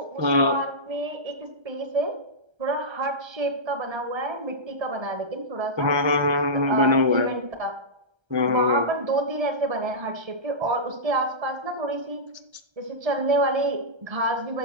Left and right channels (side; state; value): left; late; 1.3 ms